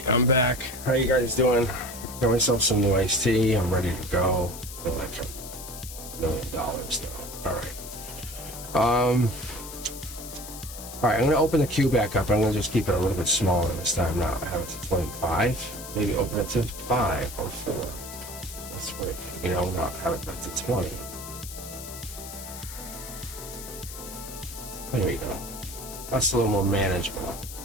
I'm back. How you guys doing? Got myself some new iced tea. I'm ready to go. I feel like $1 million though. Alright. Alright, I'm gonna open the queue back up. I'm gonna just keep it a little bit smaller this time now. I have it to 25. Maybe open it to 5 or 4. That's right. You know, not have it back to 20. There we go. That's a little more manageable.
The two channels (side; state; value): left; noise; hiss, 12 dB below the sound